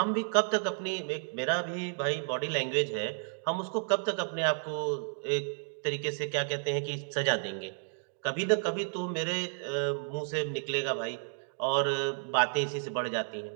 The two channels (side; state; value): left; silent; digital silence